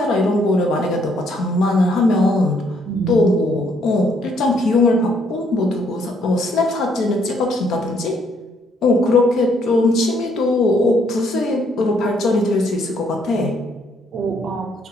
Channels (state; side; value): normal; both; correlation 0.69